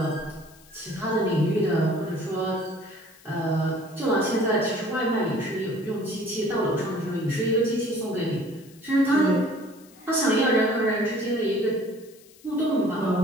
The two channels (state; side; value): noise; left; hiss, 25 dB below the sound